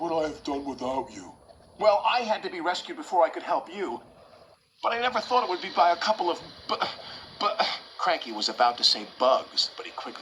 I have done without you?" "Well, I had to be rescued before I could help you. But I never thought it would be by a couple of Cranky was about to say bugs, but he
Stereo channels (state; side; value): identical; both; correlation 1.00